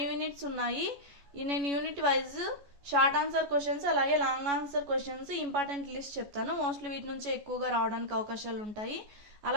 యూనిట్స్ ఉన్నాయి. నేను unit wise short answer questions అలాగే long answer questions important list చెప్తాను. మోస్ట్లీ వీటి నుంచి ఎక్కువగా రావడానికి అవకాశాలు ఉంటాయి.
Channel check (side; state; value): left; late; 14 ms